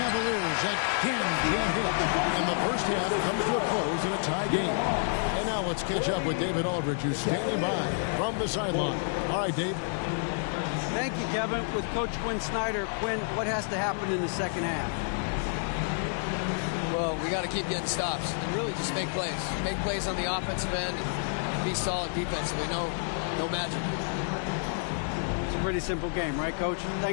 again can't hit. And the first half comes to a close in a tie game. And now let's catch up with David Aldridge, who's standing by from the sideline. All right, Dave. Thank you, Kevin. With Coach Quinn Snyder, Quinn, what has to happen in the second half? Well, we got to keep getting stops and really just make plays. Make plays on the offensive end and be solid defensively. No magic. It's a pretty simple game, right, Coach?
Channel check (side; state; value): right; silent; digital silence